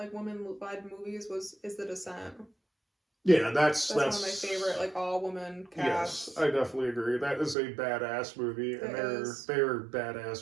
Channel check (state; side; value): drops out; left; at 7.6 s